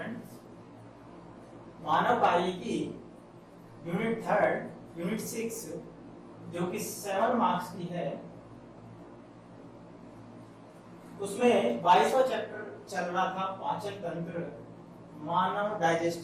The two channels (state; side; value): identical; both; correlation 1.00